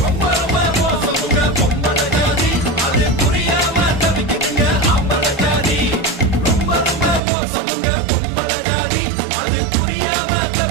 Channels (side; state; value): left; drops out; at 7.2 s